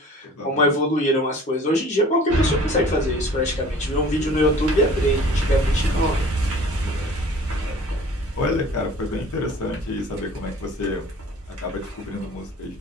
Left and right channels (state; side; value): normal; both; correlation 0.47